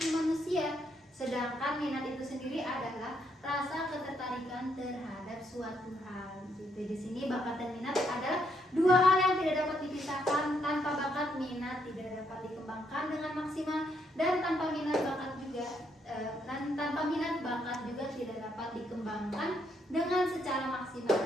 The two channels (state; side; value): normal; both; correlation 0.74